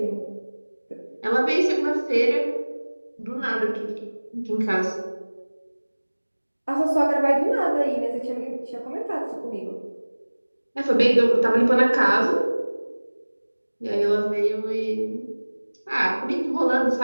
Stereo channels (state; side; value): inverted; both; correlation -1.00